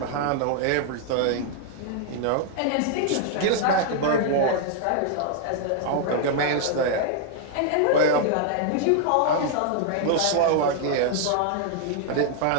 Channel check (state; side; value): different; both; correlation 0.00